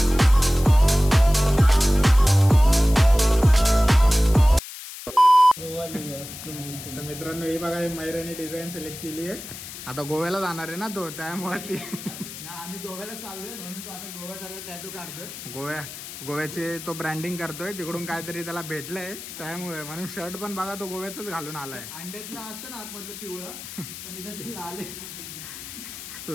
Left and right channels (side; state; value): left; noise; hiss, 12 dB below the sound